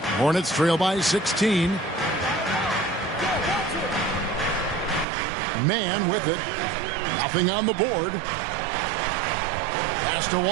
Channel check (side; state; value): left; drops out; at 5.1 s